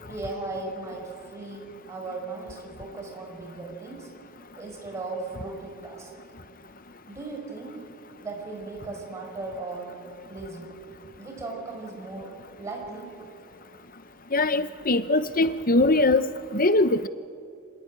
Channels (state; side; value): normal; both; correlation 0.18